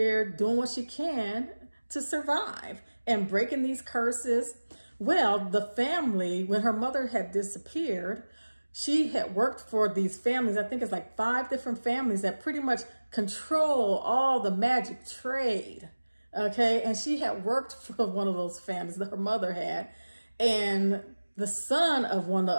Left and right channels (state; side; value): inverted; both; correlation -1.00